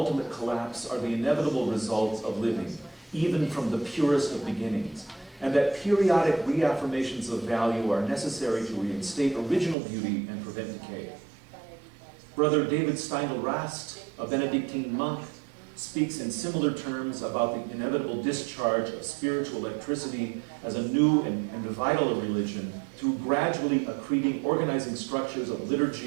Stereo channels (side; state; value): left; drops out; at 9.8 s